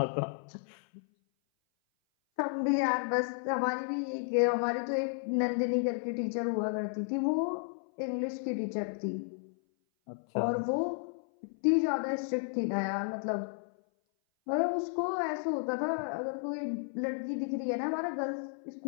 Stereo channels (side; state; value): right; silent; 56 dB below the other